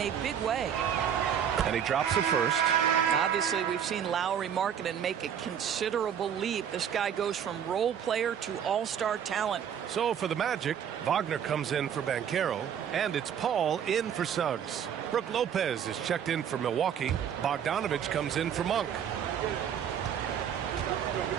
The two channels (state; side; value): quieter; left; 8.6 dB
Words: big way. And he drops the first. Obviously, we've seen Lowry Markkanen make a considerable leap. This guy goes from role player to all-star talent. So for the Magic, Wagner comes in for Banchero, and it's Paul in for Suggs. Brook Lopez is checked in for Milwaukee. Bogdanovich comes in for Monk.